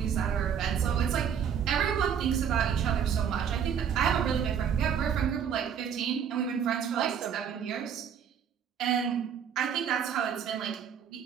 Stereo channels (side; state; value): left; quieter; 8.0 dB